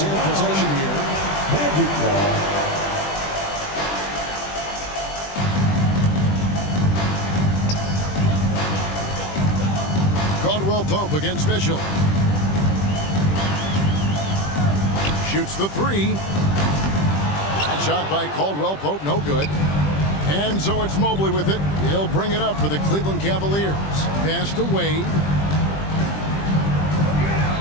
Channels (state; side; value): late; right; 20 ms